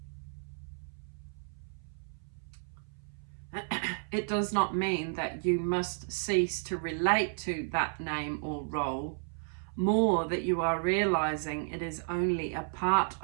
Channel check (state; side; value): silent; left; 56 dB below the other